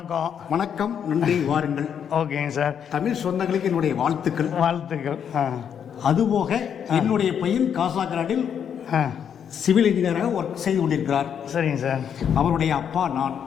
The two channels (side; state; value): right; quieter; 8.2 dB